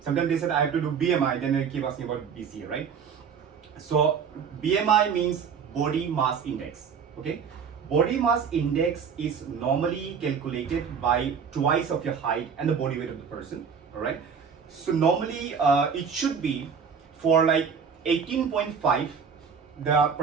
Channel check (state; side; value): quieter; left; 6.5 dB